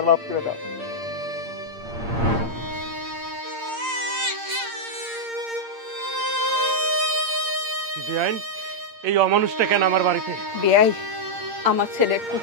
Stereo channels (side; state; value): left; late; 8.7 ms